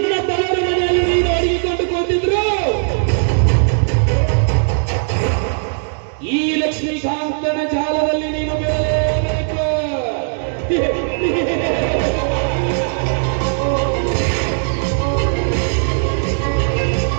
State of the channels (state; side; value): silent; left; digital silence